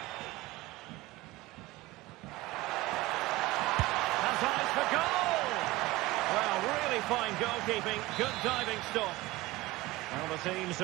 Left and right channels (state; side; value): quieter; left; 19.2 dB